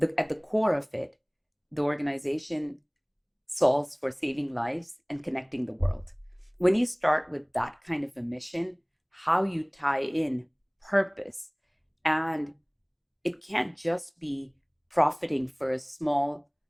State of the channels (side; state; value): both; identical; correlation 1.00